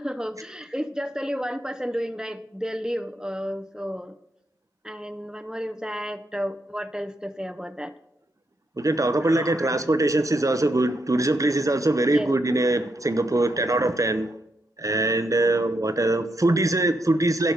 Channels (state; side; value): normal; both; correlation 0.80